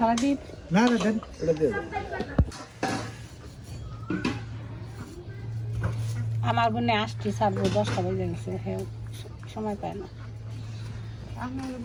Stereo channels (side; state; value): both; identical; correlation 1.00